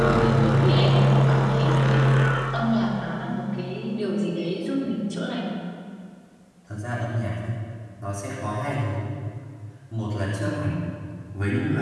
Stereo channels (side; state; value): both; identical; correlation 1.00